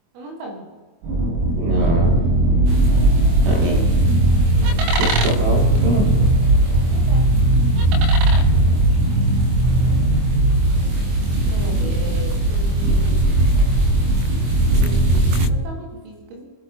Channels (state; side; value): late; left; 25 ms